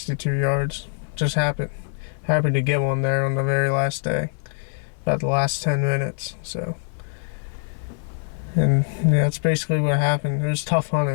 yards. Just happy to get one there on the very last day, about the last 10 minutes. So, and yeah, that's basically what happened. It was tough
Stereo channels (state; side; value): silent; right; digital silence